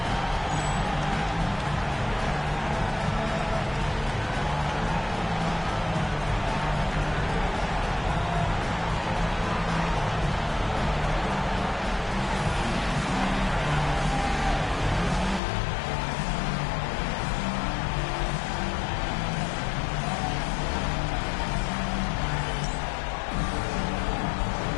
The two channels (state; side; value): drops out; right; at 15.4 s